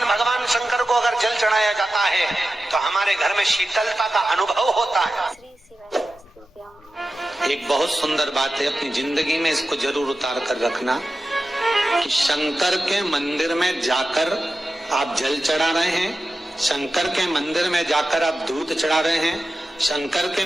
भगवान शंकर को अगर जल चढ़ाया जाता है तो हमारे घर में शीतलता का अनुभव होता है। एक बहुत सुंदर बात है, अपनी जिंदगी में इसको जरूर उतार कर रखना कि शंकर के मंदिर में जाकर आप जल चढ़ा रहे हैं, शंकर के मंदिर में जाकर आप दूध चढ़ा रहे हैं, शंकर के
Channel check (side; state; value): both; normal; correlation 0.93